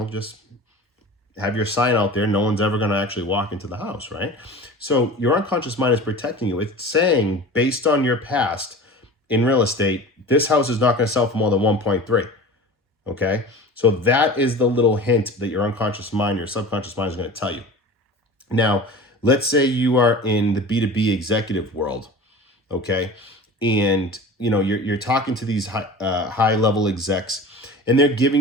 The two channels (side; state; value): both; normal; correlation 0.36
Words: just have your sign out there. No one's ever going to actually walk into the house, right? So your unconscious mind is protecting you. It's saying, based on your past in real estate, this house is not going to sell for more than 1.3. Okay. So that is the little hint that your unconscious mind, your subconscious mind is going to tell you. Now, let's say you are in the B2B executive world. Okay. And, you're talking to these high level execs, and they're giving